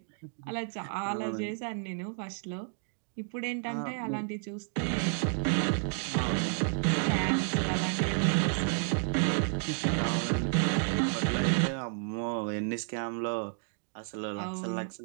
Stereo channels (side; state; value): left; silent; 57 dB below the other